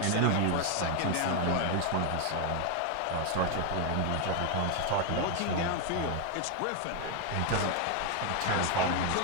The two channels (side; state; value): both; different; correlation 0.01